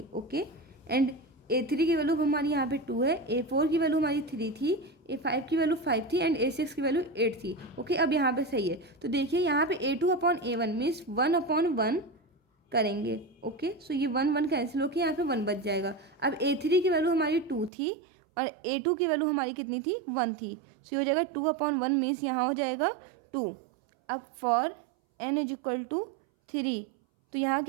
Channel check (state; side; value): drops out; left; at 17.7 s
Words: ओके, एंड a3 की वैल्यू हमारी यहाँ पे 2 है, a4 की वैल्यू हमारी 3 थी, a5 की वैल्यू 5 थी, एंड a6 की वैल्यू 8 थी। ओके, अब यहाँ पे सही है। तो देखिए यहाँ पे a2 अपॉन a1 मीन्स 1/1 करेंगे। ओके, सो ये 1 कैंसिल होकर यहाँ पे 1 बच जाएगा। अब A3 की वैल्यू हमारी 2 थी और A2 की वैल्यू हमारी कितनी थी, 1 थी। सो ये हो जाएगा 2/1 मीन्स यहाँ हो जाएगा 2। अब for n is equal to 3, तो यहाँ